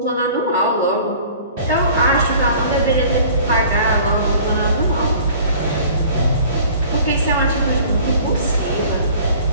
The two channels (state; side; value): inverted; both; correlation -0.48